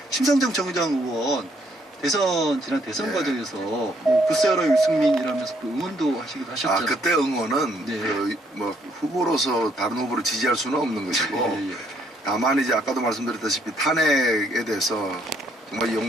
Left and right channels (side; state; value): both; normal; correlation 0.69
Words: 심상정 정의당 의원 지난 대선 네. 과정에서 뭐 글쎄여라 유승민이라면서 또 응원도 하시기도 하셨잖아요. 그때 응원은 네. 뭐 후보로서 다른 후보를 지지할 수는 없는 것이고 예. 다만 이제 아까도 말씀드렸다시피 탄핵에 대해서 정말